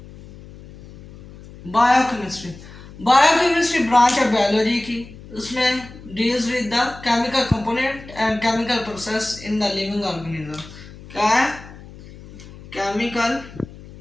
बायोकेमिस्ट्री बायोकेमिस्ट्री ब्रांच है बायोलॉजी की। उसमें deals with the chemical component and chemical process in the living organism. क्या है? Chemical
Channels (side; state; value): left; noise; hum, 18 dB below the sound